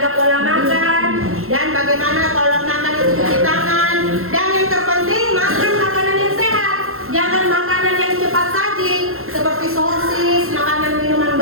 pola makan, dan bagaimana kalau makan itu cuci tangan. Dan yang terpenting makan makanan yang sehat, jangan makanan yang cepat saji seperti sosis, makanan minuman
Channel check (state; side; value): late; left; 0.62 ms